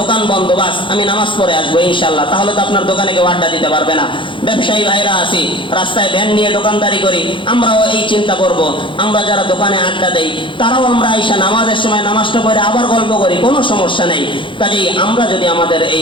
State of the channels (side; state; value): right; late; 0.24 ms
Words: বন্ধ, বাস আমি নামাজ পড়ে আসবো ইনশাল্লাহ, তাহলে তো আপনার দোকানে কেউ আড্ডা দিতে পারবে না। ব্যবসায়ী ভাইরা আছি, রাস্তায় ভ্যান নিয়ে দোকানদারি করি, আমরাও এই চিন্তা করব, আমরা যারা দোকানে আড্ডা দেই তারাও আমরা আইসা নামাজের সময় নামাজটা পড়ে আবার গল্প করি, কোনো সমস্যা নেই। কাজেই আমরা যদি আমাদের